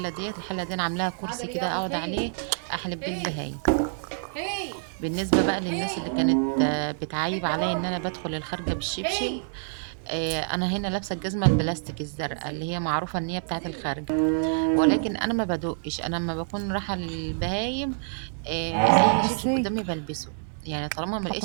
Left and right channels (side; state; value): left; silent; 60 dB below the other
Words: ديت، الحله دي انا عاملاها كرسي كده اقعد عليه احلب بيه البهايم. بالنسبه بقى للناس اللي كانت بتعايب عليا ان انا بدخل الخارجه بالشبشب، انا هنا لابسه الجزمه البلاستيك الزرقاء اللي هي معروفه ان هي بتاعه الخارجه، ولكن انا ما بدقش. انا لما بكون رايحه للبهايم اي شبشب قدامي بلبسه. يعني طالما ما